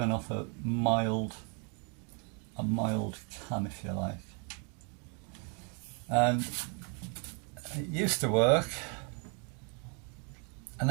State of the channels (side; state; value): left; quieter; 38.2 dB